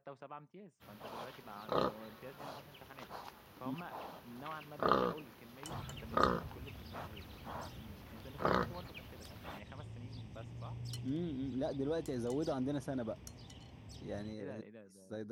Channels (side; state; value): both; identical; correlation 1.00